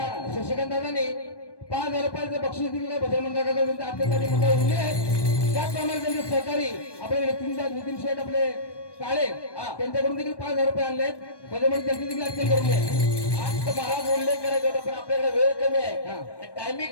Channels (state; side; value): late; right; 1.2 ms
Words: शशिकांत दादांनी 5,000 रुपयाचं बक्षीस दिलेलं भजन मंडळाकडे अत्यंत मंडळ उरले आहे. त्याचप्रमाणे त्यांचे सहकारी आपले नितीन शेठ आपले काळे त्यांच्याकडून देखील 5,000 रुपये आणले आहेत. भजन मंडळ त्यांचे देखील अत्यंत करून आहे. आज तर मला उल्लेख करायचा होता पण आपल्याकडे वेळ कमी आहे